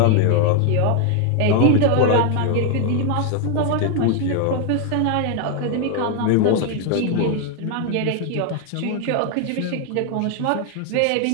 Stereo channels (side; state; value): both; different; correlation 0.01